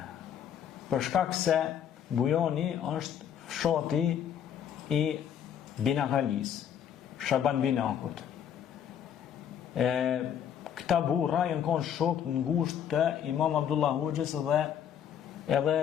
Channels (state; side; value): quieter; right; 9.1 dB